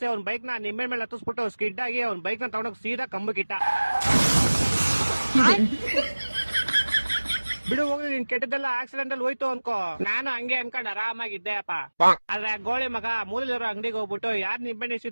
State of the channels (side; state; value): both; inverted; correlation -1.00